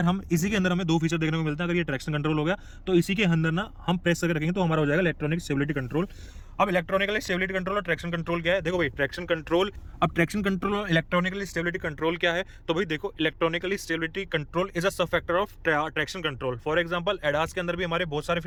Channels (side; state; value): both; identical; correlation 1.00